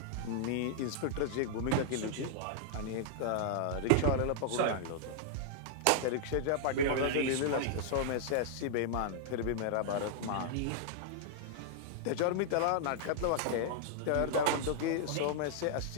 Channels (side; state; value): both; different; correlation -0.01